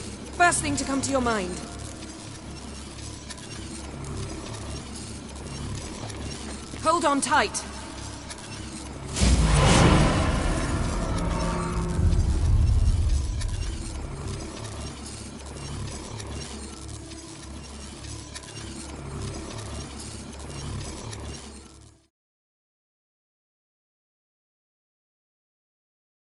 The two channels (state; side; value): identical; both; correlation 1.00